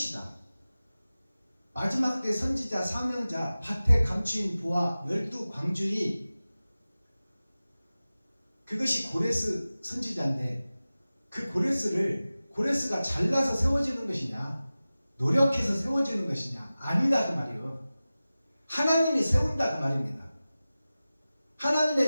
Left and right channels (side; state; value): both; inverted; correlation -0.96